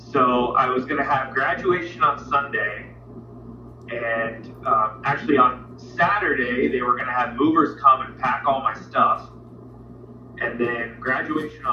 I was going to have graduation on Sunday, and actually on Saturday, they were going to have movers come and pack all my stuff, and then graduation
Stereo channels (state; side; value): identical; both; correlation 1.00